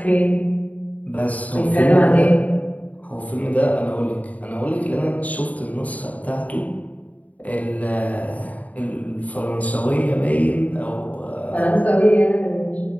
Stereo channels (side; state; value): right; late; 0.072 ms